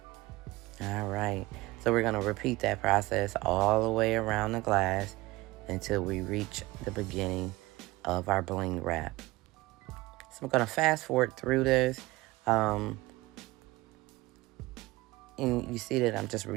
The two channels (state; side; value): quieter; left; 20.1 dB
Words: All right. So we're going to repeat that process all the way around the glass until we reach the beginning of our bling wrap. So I'm going to fast forward through this. And you see that I'm just